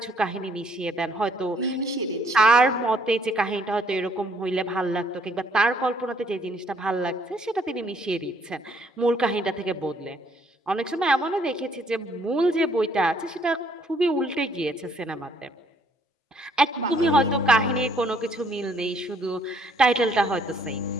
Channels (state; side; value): normal; both; correlation 0.66